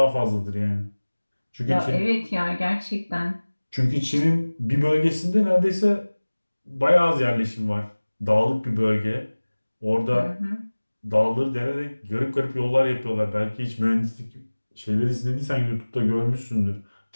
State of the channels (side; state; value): both; inverted; correlation -1.00